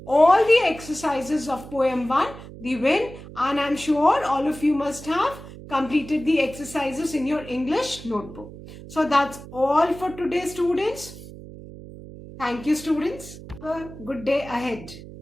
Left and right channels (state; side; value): noise; right; hum, 15 dB below the sound